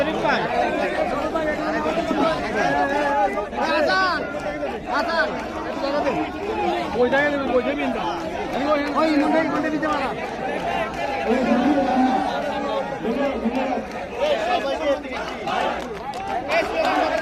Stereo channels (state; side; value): identical; both; correlation 1.00